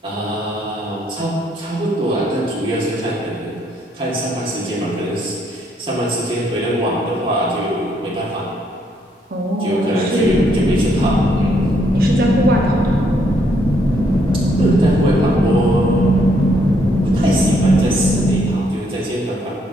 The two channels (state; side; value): normal; both; correlation 0.72